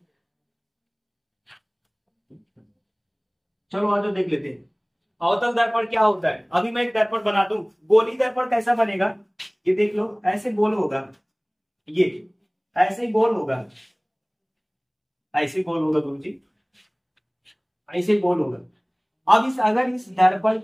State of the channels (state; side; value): identical; both; correlation 1.00